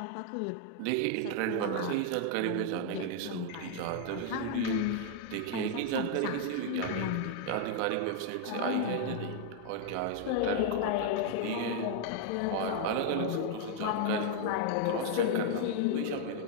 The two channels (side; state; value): both; different; correlation 0.00